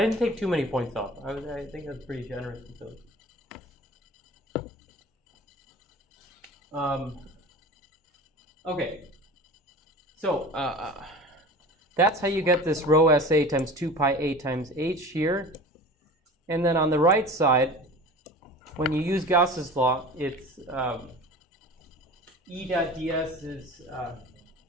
didn't take too many points off. I think that's pretty generous with those. Okay, so that's how you get this rho SA times 2 pi A times H here. And then on the right side, when you use Gauss's law, it's E dot ds is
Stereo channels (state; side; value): normal; both; correlation 0.38